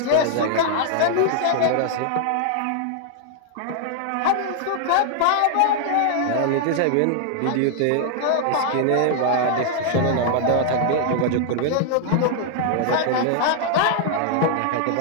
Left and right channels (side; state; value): both; different; correlation 0.00